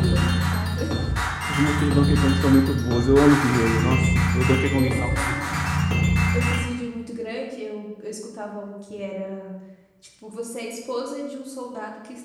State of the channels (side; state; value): both; identical; correlation 1.00